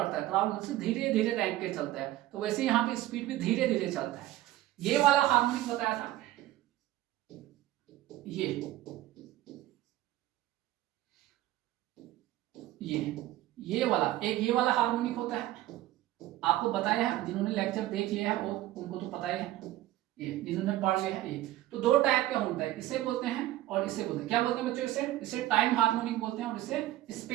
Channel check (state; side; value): quieter; left; 15.2 dB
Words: है, क्राउल से धीरे धीरे रैंक के चलता है, तो वैसे यहाँ पे स्पीड भी धीरे धीरे चलता है। ये वाला हार्मोनिक बताया था, ये वाला एक, ये वाला हार्मोनिक होता है, आपको बताया है, जिन्होंने लेक्चर देख लिया है वो उनको तो पता ही है, ये जिन्होंने पढ़ लिया है। ये तो दो टाइप का होता है, इसे बोलते हैं और इसे बोलते हैं, क्या बोलते हैं बच्चों, इसे टाइम हार्मोनिक बोलते हैं और इसे